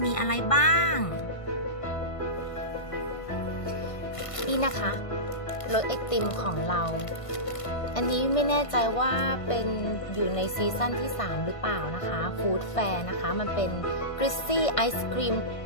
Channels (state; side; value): late; right; 1.5 ms